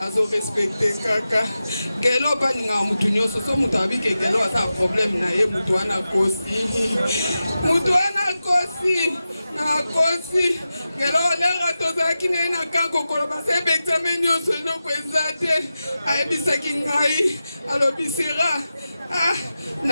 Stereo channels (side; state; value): both; inverted; correlation -0.92